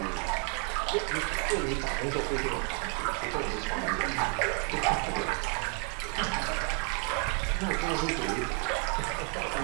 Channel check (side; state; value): left; quieter; 33.8 dB